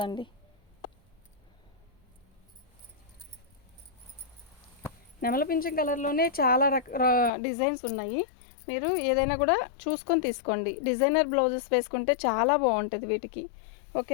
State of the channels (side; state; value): right; drops out; at 7.3 s